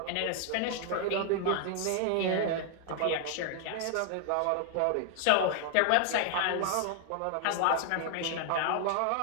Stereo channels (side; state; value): both; different; correlation 0.00